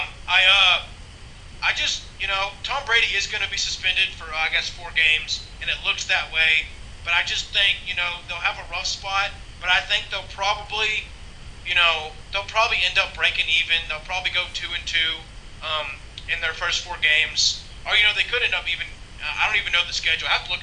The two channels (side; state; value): both; identical; correlation 1.00